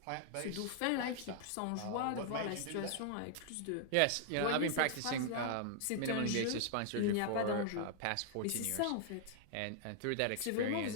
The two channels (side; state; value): both; different; correlation -0.01